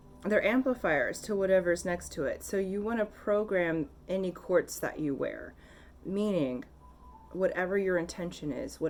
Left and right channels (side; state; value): both; identical; correlation 1.00